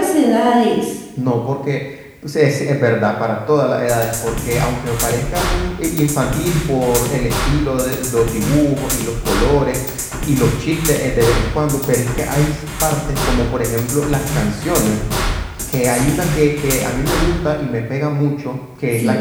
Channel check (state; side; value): identical; both; correlation 1.00